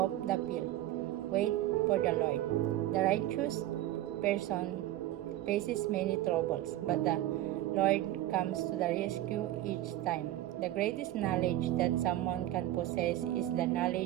the field. Wait for the Lord. The righteous person faces many troubles, but the Lord comes to the rescue each time. The greatest knowledge that someone can possess is the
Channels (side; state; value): left; quieter; 14.5 dB